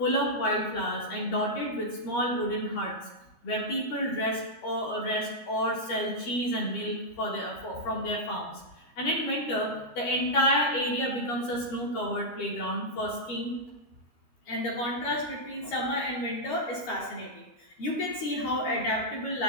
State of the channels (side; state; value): right; late; 13 ms